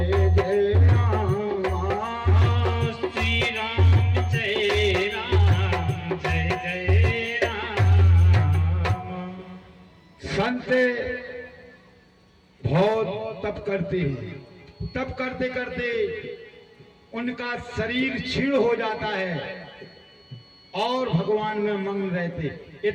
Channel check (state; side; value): identical; both; correlation 1.00